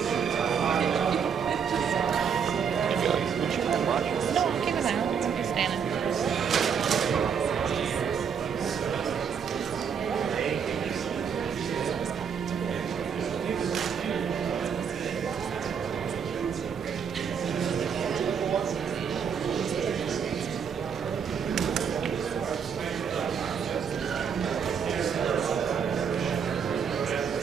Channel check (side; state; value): left; quieter; 7.0 dB